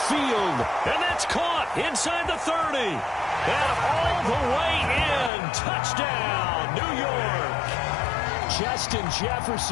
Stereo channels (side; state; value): right; drops out; at 5.3 s